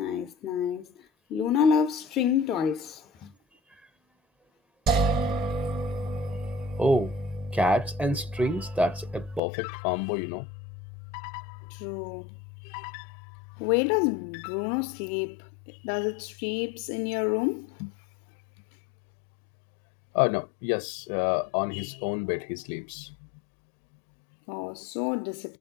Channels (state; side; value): drops out; right; at 9.4 s